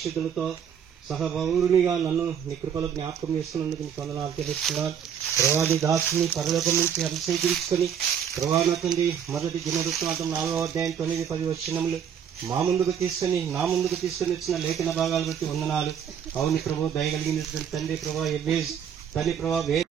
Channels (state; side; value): quieter; left; 8.4 dB